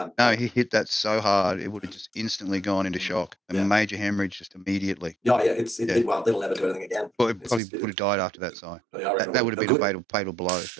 no, he hit that so hard it would have just instantly gone into shock. A major hemorrhage just immediately. Well, it'll never do anything again. Well, it probably would have died after that, Si. That would have been a fatal blow.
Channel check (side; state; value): left; drops out; at 7.6 s